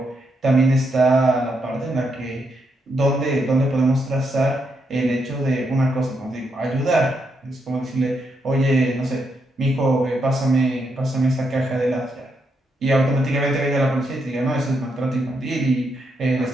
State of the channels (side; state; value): both; normal; correlation 0.80